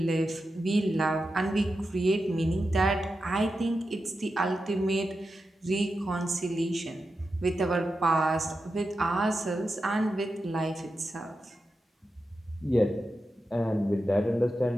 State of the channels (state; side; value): normal; both; correlation 0.90